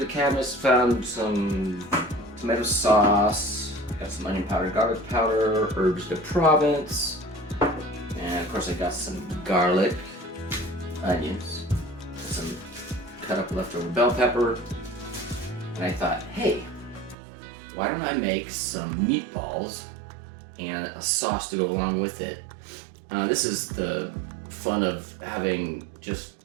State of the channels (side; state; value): left; drops out; at 17.2 s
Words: cabinets, found some tomato sauce, got some onion powder, garlic powder, herbs de Provence, and of course I got some garlic, onions, some cut up leftover bell pepper, and I thought, hey, why don't I make some meatballs and a sauce to go along with it. This is the fun of having just